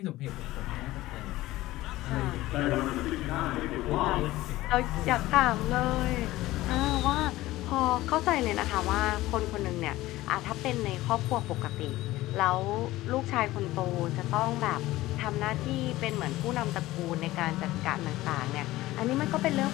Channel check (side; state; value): right; quieter; 17.2 dB